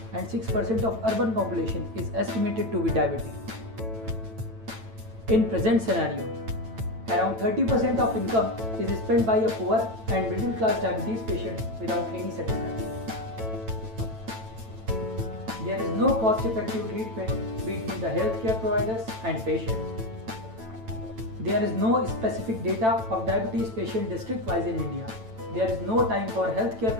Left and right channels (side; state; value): left; late; 9.0 ms